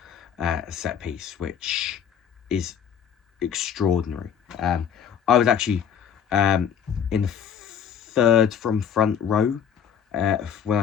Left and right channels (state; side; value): quieter; right; 8.0 dB